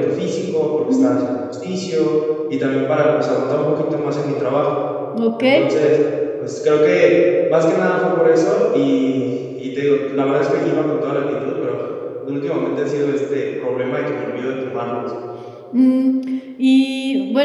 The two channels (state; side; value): identical; both; correlation 1.00